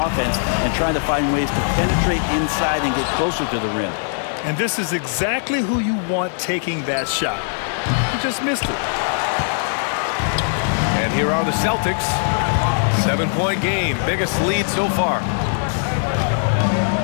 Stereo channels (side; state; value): right; silent; digital silence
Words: offense and trying to find ways to penetrate inside and get closer to the rim. And this is exactly who you want taking that shot. He just missed it. And here are the Celtics. 7-point game. Biggest lead so far.